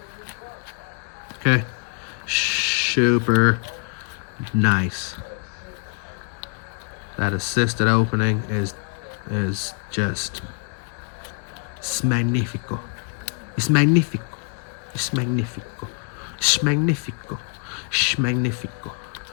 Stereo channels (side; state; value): right; quieter; 36.5 dB